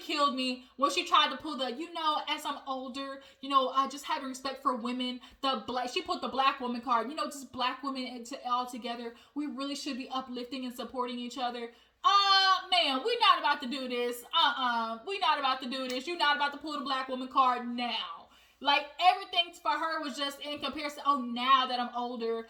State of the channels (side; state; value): both; identical; correlation 1.00